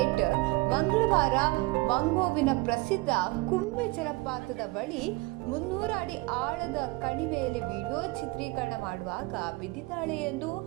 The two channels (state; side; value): quieter; left; 23.0 dB